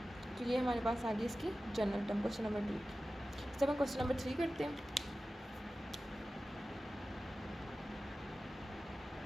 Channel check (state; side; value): normal; both; correlation 0.95